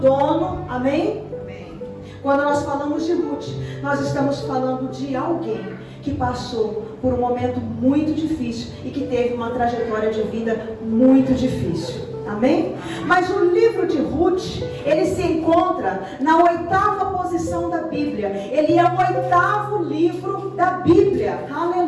Amém? Amém. Quando nós falamos de Ruth, nós estamos falando de alguém que passou por um momento muito difícil e que teve uma trajetória de vida muito difícil. Amém? Mas o livro de Ruth, ele se encontra na 8ª posição da Bíblia. Ele é o 8º livro da Bíblia.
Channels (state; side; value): identical; both; correlation 1.00